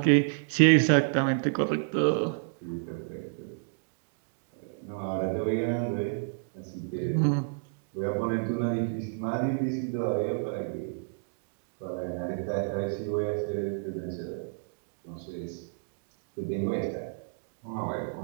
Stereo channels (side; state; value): left; silent; digital silence